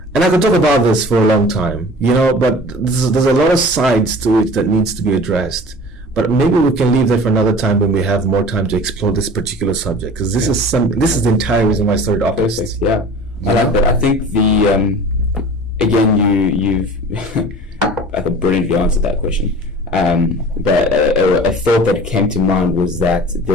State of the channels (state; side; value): normal; both; correlation 0.41